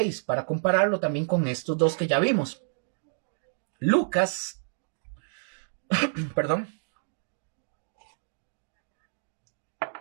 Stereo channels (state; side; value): silent; left; digital silence